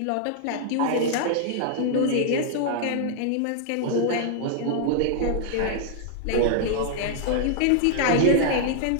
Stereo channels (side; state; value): both; different; correlation 0.00